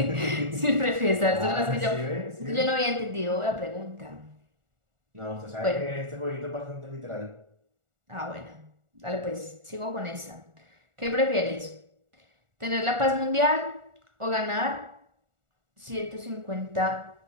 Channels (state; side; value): late; left; 1.4 ms